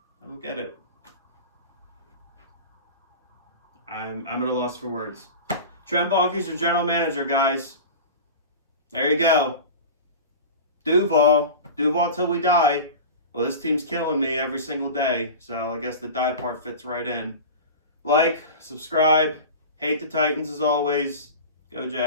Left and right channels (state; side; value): inverted; both; correlation -0.31